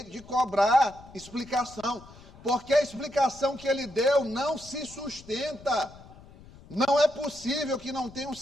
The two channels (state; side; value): noise; left; rumble, 21 dB below the sound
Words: de cobrar explicação, porque a explicação que ele deu não se sustenta. Não é possível que não tenha um